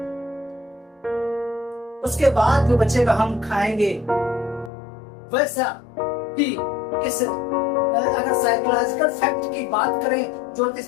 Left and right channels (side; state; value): right; drops out; at 4.7 s